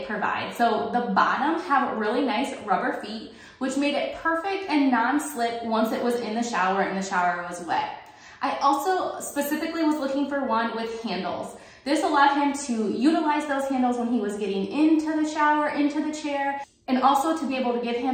provides. So the bottom have really nice rubber feet, which made it perfect and non-slip once it was in the shower and the shower was wet. I also specifically was looking for one with handles. This allowed him to utilize those handles when he was getting into the shower, into the chair, and also to be able to give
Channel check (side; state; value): both; identical; correlation 1.00